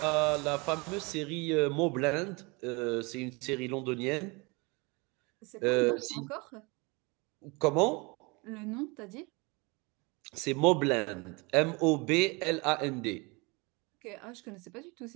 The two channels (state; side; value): quieter; left; 27.8 dB